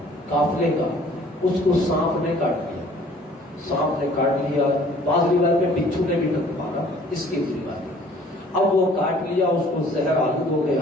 قافلے کا، اس کو سانپ نے کاٹ لیا. سانپ نے کاٹ لیا، بعض روایت میں بچھو نے بھی مارا، اس کی روایت. اب وہ کاٹ لیا، اس کو زہر آلود ہو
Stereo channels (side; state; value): both; normal; correlation 0.54